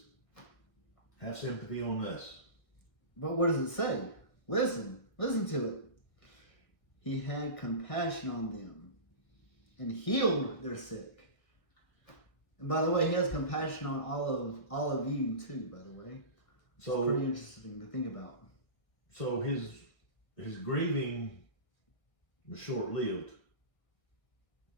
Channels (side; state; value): right; late; 1.6 ms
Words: have sympathy on us. But what does it say? Listen to it. He had compassion on them and healed their sick. And by the way, he has compassion on all of you too, by the way. So it's pretty interesting to think about. So his grieving was short-lived.